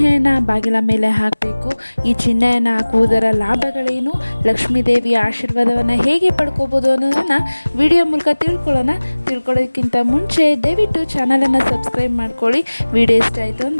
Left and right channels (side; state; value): both; inverted; correlation -1.00